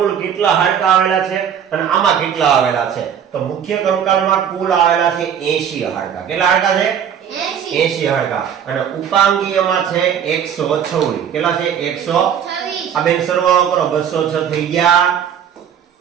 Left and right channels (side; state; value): left; quieter; 8.5 dB